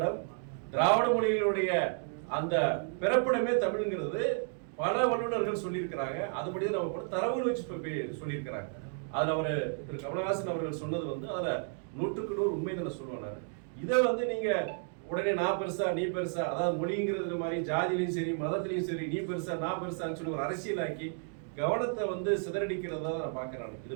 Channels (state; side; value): silent; left; 55 dB below the other